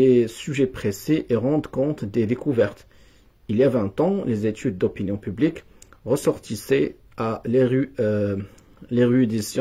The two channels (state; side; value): identical; both; correlation 1.00